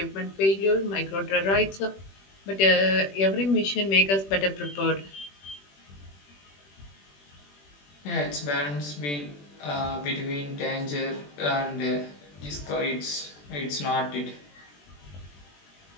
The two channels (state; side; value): late; right; 21 ms